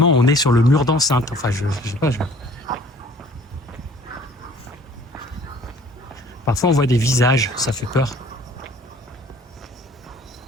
on est sur le mur d'enceinte. Enfin, je sais pas. Parfois on voit des visages, ça fait peur.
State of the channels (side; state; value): both; normal; correlation 0.53